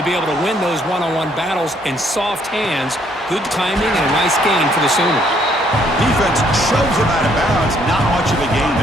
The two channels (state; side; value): normal; both; correlation 0.67